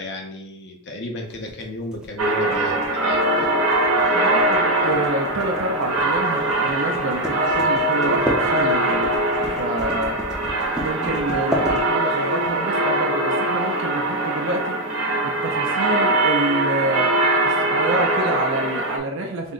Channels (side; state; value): both; normal; correlation 0.03